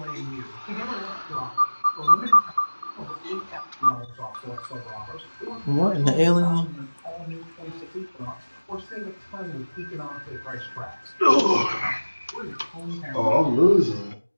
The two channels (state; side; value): inverted; both; correlation -1.00